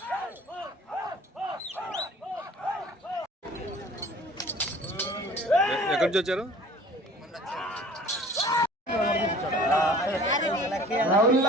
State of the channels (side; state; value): both; normal; correlation 0.48